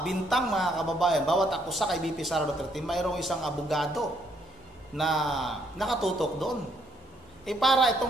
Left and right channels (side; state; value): both; normal; correlation 0.70